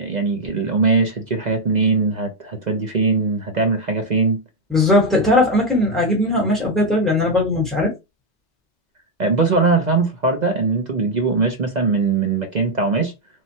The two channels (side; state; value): both; normal; correlation 0.03